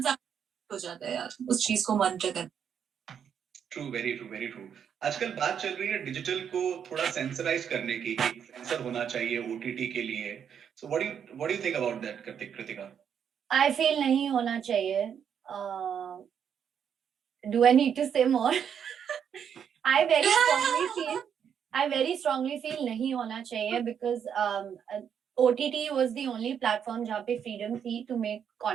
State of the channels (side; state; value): left; quieter; 8.1 dB